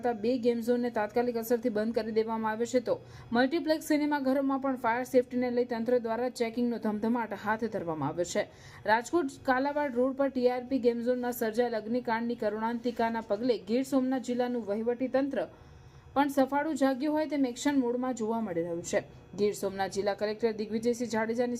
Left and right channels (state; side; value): identical; both; correlation 1.00